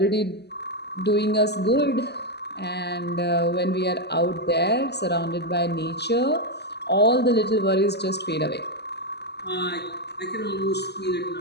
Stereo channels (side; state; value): right; late; 0.49 ms